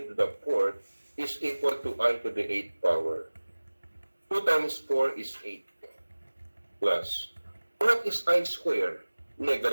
to the 4th is equal to I to the 8th power. 2 times 4 is 8 plus. What is I square?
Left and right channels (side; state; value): both; inverted; correlation -1.00